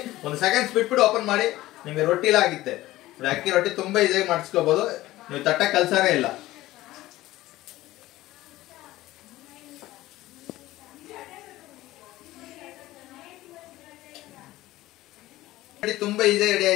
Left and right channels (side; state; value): right; quieter; 16.7 dB